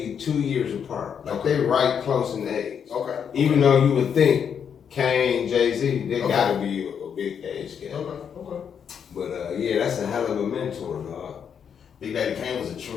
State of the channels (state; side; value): quieter; right; 7.6 dB